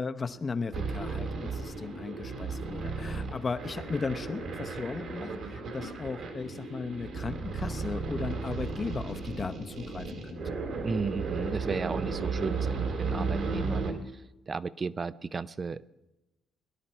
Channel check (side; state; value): both; normal; correlation 0.78